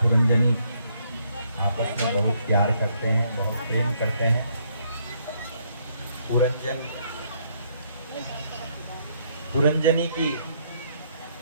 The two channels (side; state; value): both; inverted; correlation -0.70